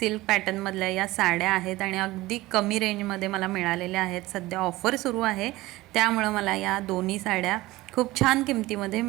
पॅटर्नमधल्या या साड्या आहेत आणि अगदी कमी रेंजमध्ये मला मिळालेल्या आहेत। सध्या ऑफर सुरू आहे त्यामुळं मला या दोन्ही साड्या खूप छान किमतीमध्ये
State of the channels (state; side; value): quieter; left; 18.7 dB